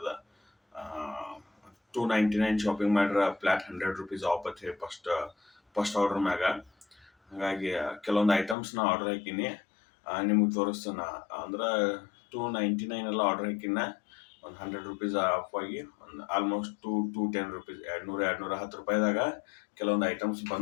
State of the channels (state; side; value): drops out; right; at 8.6 s